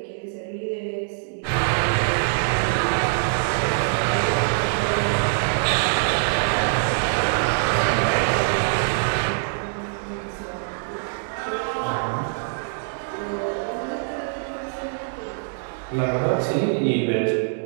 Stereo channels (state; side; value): silent; left; digital silence